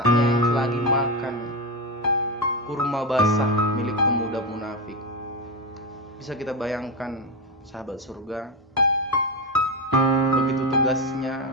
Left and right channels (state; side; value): normal; both; correlation 0.13